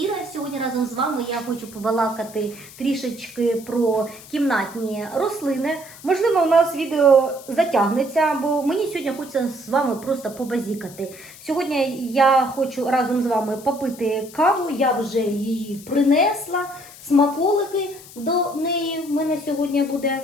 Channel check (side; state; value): left; noise; hiss, 19 dB below the sound